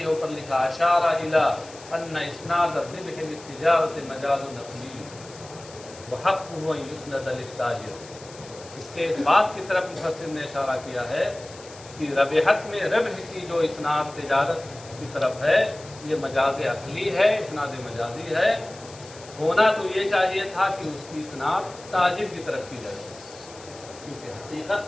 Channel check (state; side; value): noise; left; hiss, 19 dB below the sound